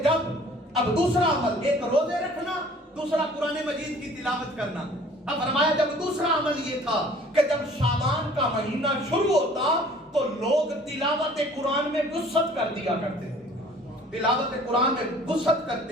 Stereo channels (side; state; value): both; normal; correlation 0.52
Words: اب دوسرا عمل, ایک روزے رکھنا, دوسرا قرآن مجید کی تلاوت کرنا. اب فرمایا جب دوسرا عمل یہ تھا کہ جب شعبان کا مہینہ شروع ہوتا تو لوگ تلاوت قرآن میں وسعت کر دیا کرتے تھے, تلاوت قرآن میں وسعت